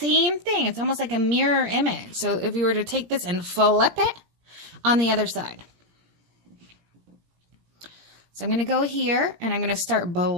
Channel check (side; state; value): left; late; 17 ms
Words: thing. It's almost like a mirror image. So if you were to take this and flip it on the other side. So I'm going to go here, and I'm going to start